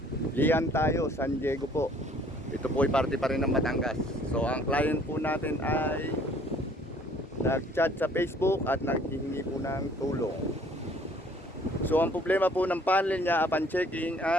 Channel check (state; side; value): normal; both; correlation 0.57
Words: Lian tayo, San Diego po. Ito po ay parte pa rin ng Batangas. So ang client po natin ay nag-chat sa Facebook at naghihingi po ng tulong. So ang problema po ng panel niya upon checking